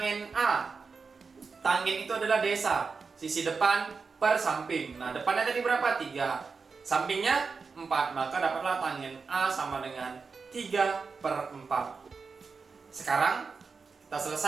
A. Tangen itu adalah desa, sisi depan per samping. Nah, depannya tadi berapa? 3. Sampingnya 4. Maka dapatlah tangen A sama dengan 3/4. Sekarang kita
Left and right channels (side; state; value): left; quieter; 4.9 dB